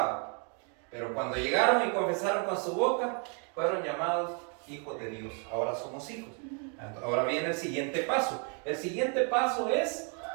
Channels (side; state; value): left; quieter; 39.5 dB